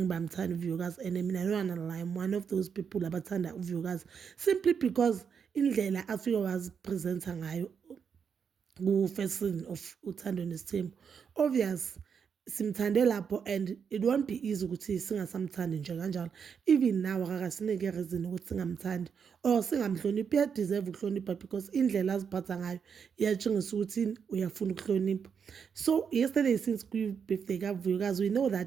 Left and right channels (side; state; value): left; quieter; 6.8 dB